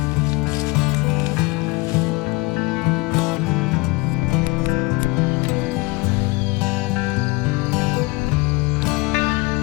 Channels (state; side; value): quieter; right; 24.9 dB